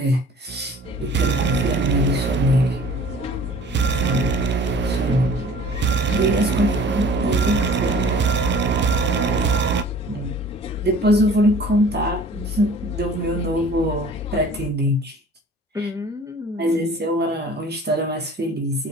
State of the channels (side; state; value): both; normal; correlation 0.48